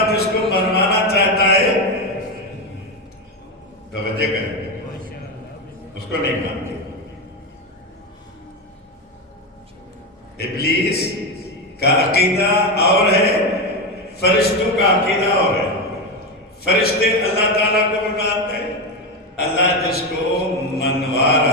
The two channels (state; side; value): normal; both; correlation 0.13